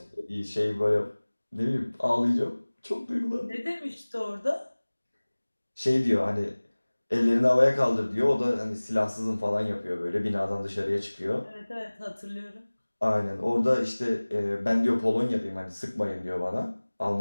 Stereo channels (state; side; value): inverted; both; correlation -1.00